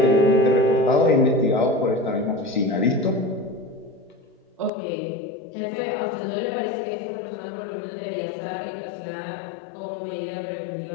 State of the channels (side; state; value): right; drops out; at 4.7 s